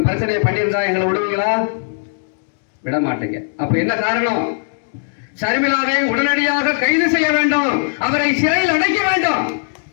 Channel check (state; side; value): silent; right; digital silence